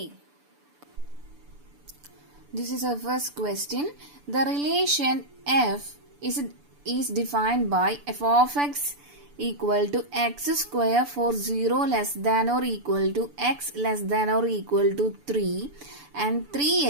This is our first question. The relation f is defined by f of x equal to x square for 0 less than or equal to x less than or equal to 3 and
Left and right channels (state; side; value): late; left; 6.9 ms